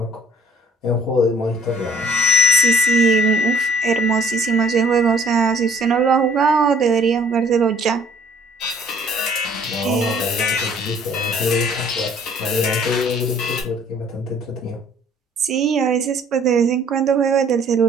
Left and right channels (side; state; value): both; normal; correlation 0.57